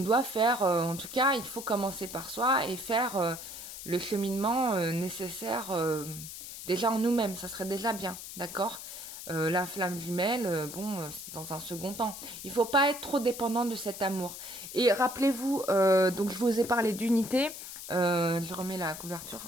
faire, en tout cas, il faut commencer par soi et faire le cheminement nécessaire déjà en nous-mêmes. Ça serait déjà bien, d'accord? La flamme jumelle, bon, c'est dans un second temps. Il faut pas être trop dépendant de cet amour. Et rappelez-vous, donc je vous ai parlé d'unité. Je remets la couverture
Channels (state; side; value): noise; left; hiss, 11 dB below the sound